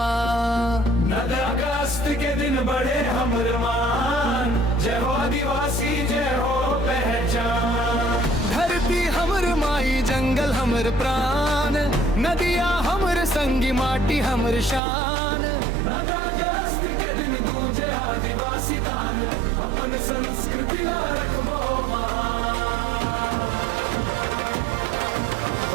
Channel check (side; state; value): left; drops out; at 14.8 s